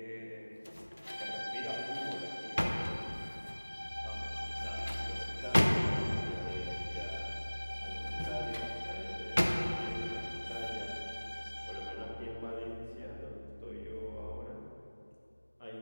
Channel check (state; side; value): inverted; both; correlation -1.00